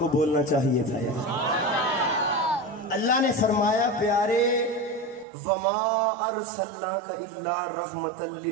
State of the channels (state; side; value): drops out; left; at 5.2 s